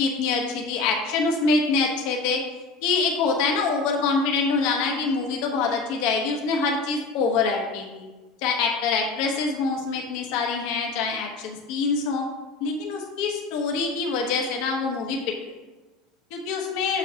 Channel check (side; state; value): right; quieter; 4.0 dB